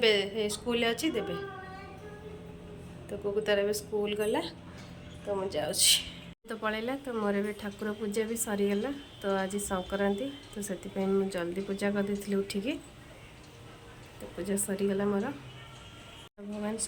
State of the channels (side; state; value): both; identical; correlation 1.00